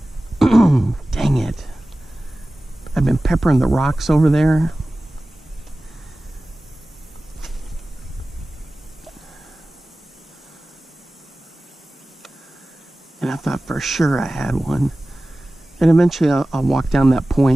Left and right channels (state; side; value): normal; both; correlation 0.96